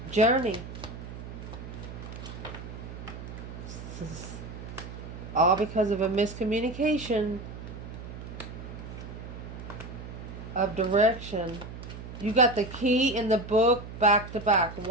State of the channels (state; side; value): noise; right; hum, 11 dB below the sound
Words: journey. All because of a miscommunication of direction. You got the key in the book back to back.